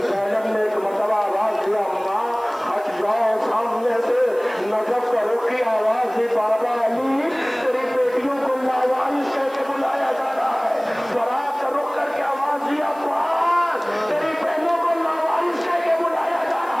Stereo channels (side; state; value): right; noise; hiss, 26 dB below the sound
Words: زینب نے ایک مرتبہ آواز دیا ماں ہٹ جاؤ سامنے سے، نجف کرو کی آواز دی بابا علی تیری بیٹیوں کو لاوارث کہہ کے بلایا جا رہا ہے، برات کا رخ کر کے آواز دیا پاس تیری بہنوں کو لاوارث کہہ کے بلایا جا